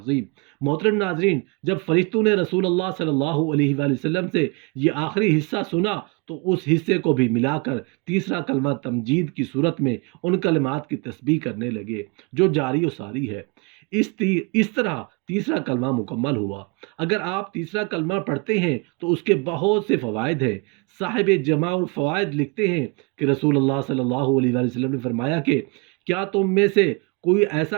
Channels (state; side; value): quieter; left; 29.7 dB